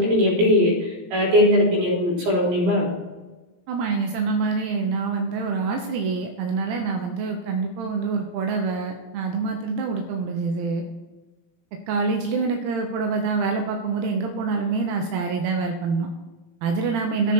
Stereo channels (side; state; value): left; late; 18 ms